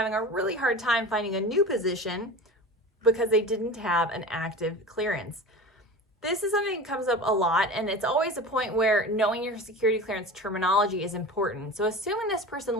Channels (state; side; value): normal; both; correlation 0.33